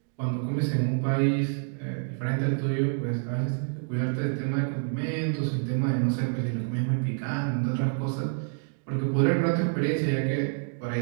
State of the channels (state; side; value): silent; left; 60 dB below the other